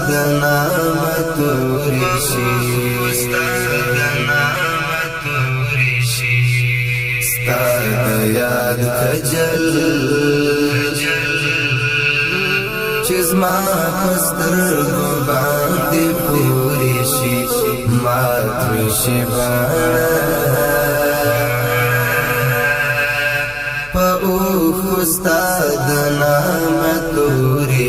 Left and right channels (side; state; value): left; noise; hum, 21 dB below the sound